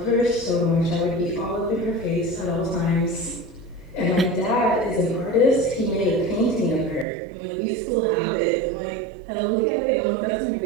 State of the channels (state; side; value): drops out; left; at 7.1 s